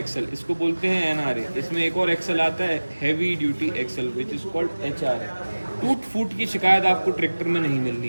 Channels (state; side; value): inverted; both; correlation -1.00